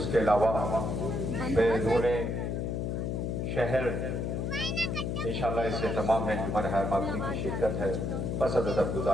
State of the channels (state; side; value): noise; left; hum, 1 dB below the sound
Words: کے علاوہ بیرون شہر انشاءاللہ اس سے تمام میں انجمن حیماتمی کی شرکت ہے۔ بس ادب